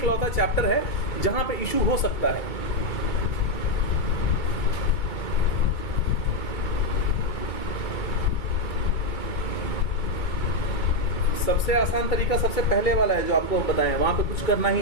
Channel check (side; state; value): right; late; 2.2 ms